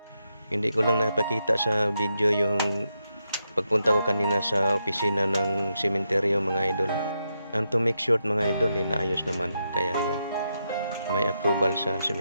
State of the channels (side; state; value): both; inverted; correlation -0.84